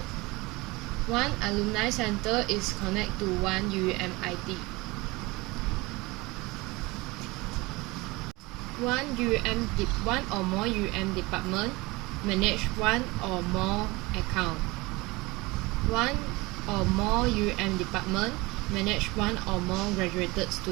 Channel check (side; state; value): left; quieter; 23.0 dB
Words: One alumni center is connect to one UUM ID. One or more UUM department manage one or more account. One or more UUM department manage one or more graduated